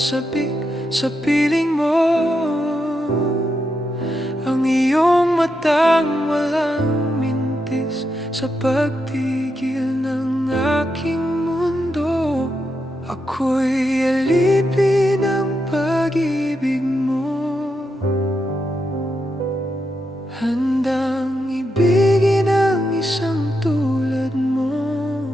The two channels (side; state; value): both; normal; correlation 0.84